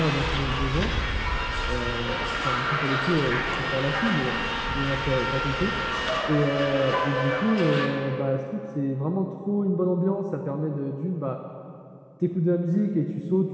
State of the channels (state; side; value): identical; both; correlation 1.00